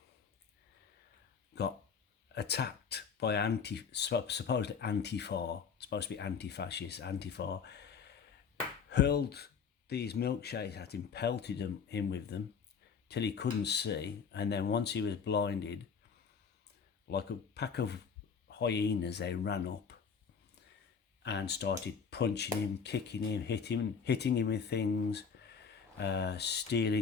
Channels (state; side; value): quieter; right; 6.2 dB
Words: got attacked by supposedly Antifa, supposed to be anti-fascist Antifa, hurled these milkshakes at him, pelted him with them till he couldn't see, and then once he was blinded, like a pack of hyenas, they ran up and started punching him, kicking him, hitting him with things,